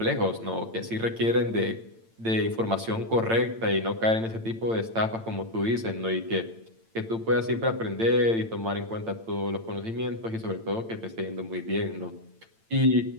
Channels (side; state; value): left; late; 8.9 ms